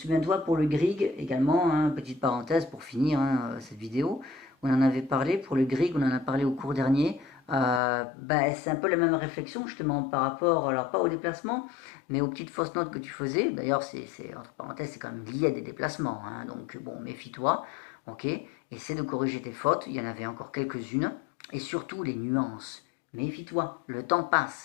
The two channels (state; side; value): drops out; right; at 7.8 s